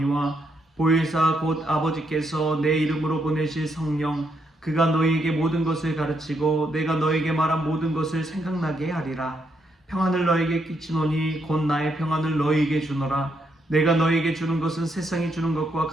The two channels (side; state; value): both; normal; correlation 0.77